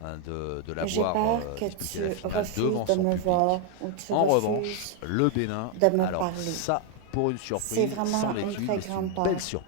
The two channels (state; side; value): different; both; correlation 0.01